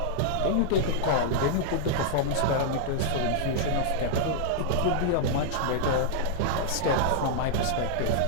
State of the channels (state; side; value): different; both; correlation -0.01